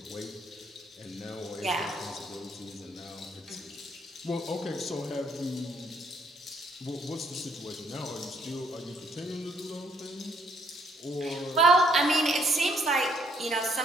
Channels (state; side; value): normal; both; correlation 0.68